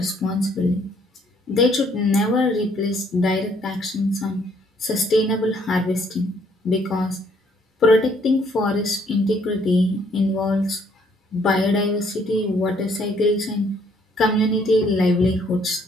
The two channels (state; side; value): normal; both; correlation 0.65